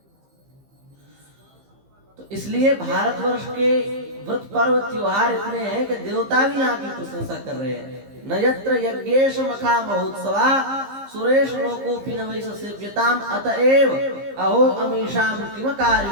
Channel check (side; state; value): left; late; 15 ms